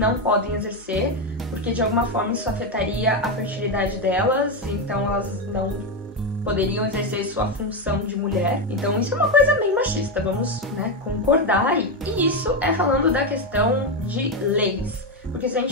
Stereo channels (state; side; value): normal; both; correlation 0.09